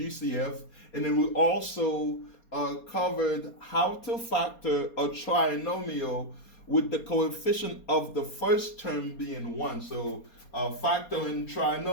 and then we also covered how to factor a trinomial with the coefficient of the first term being 1. So factoring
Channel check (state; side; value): late; right; 4.3 ms